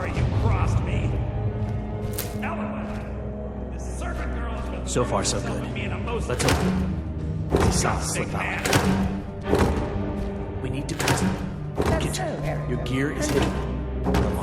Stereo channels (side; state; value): both; identical; correlation 1.00